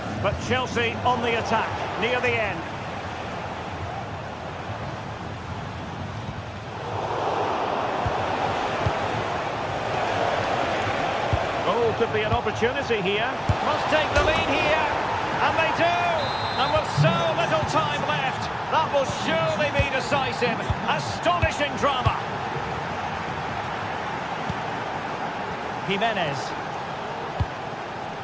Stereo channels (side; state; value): both; identical; correlation 1.00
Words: but Chelsea on the attack near the end. Oh, could be an opportunity here. Must take the lead here. And they do. And with so little time left, that will surely be decisive. Astonishing drama. Jimenez.